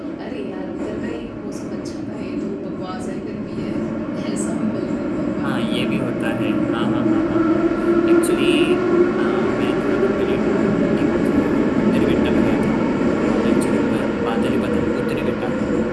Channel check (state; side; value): identical; both; correlation 1.00